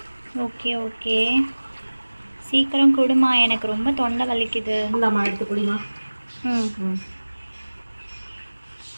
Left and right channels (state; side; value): inverted; both; correlation -1.00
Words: ஓகே ஓகே, சீக்கிரம் குடுமா, எனக்கு ரொம்ப தொண்டை வலிக்குது. இந்தம்மா எடுத்து குடிமா.